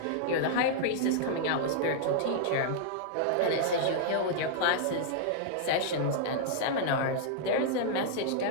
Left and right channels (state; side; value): different; both; correlation -0.01